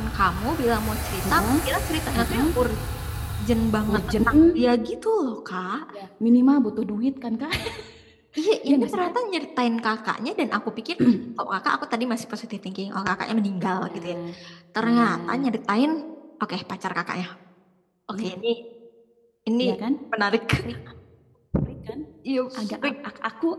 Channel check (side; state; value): both; identical; correlation 1.00